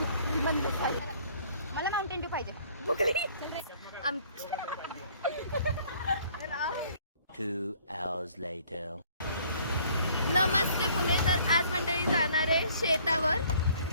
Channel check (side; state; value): both; inverted; correlation -0.58